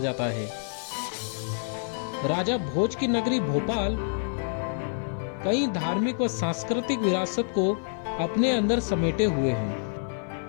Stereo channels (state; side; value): silent; right; 57 dB below the other